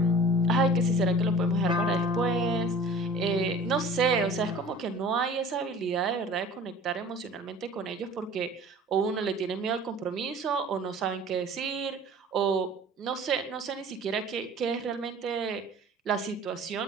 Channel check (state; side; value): normal; both; correlation 0.44